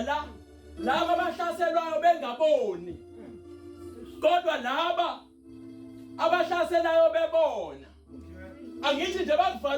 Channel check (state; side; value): identical; both; correlation 1.00